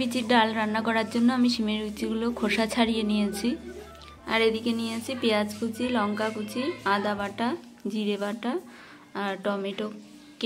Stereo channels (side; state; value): both; identical; correlation 1.00